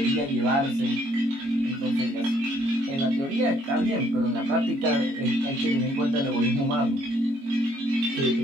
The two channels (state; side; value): late; left; 22 ms